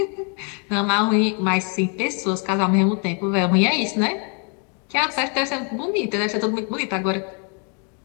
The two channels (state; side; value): quieter; right; 38.3 dB